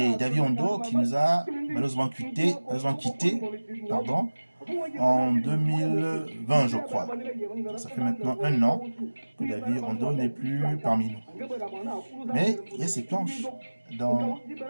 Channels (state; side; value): inverted; both; correlation -1.00